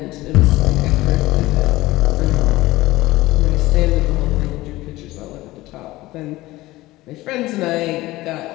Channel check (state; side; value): quieter; right; 18.3 dB